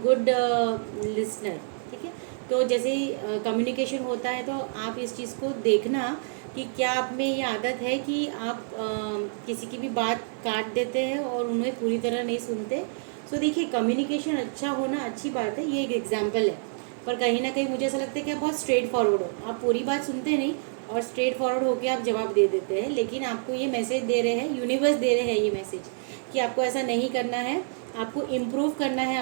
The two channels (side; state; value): left; silent; digital silence